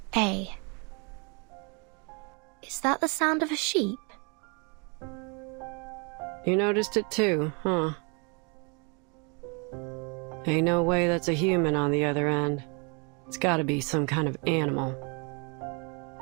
Is that the sound of a sheep? You noticed it too, huh? Ain't no way that's a human on the other end. It's gotta be some kind of animal.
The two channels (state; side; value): quieter; left; 33.6 dB